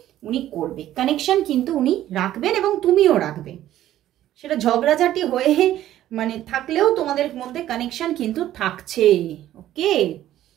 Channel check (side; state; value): left; quieter; 13.0 dB